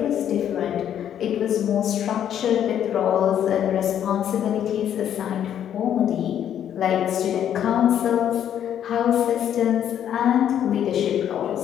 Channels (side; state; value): right; quieter; 9.9 dB